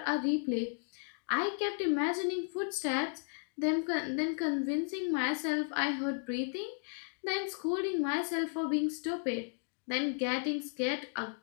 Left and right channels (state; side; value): silent; right; digital silence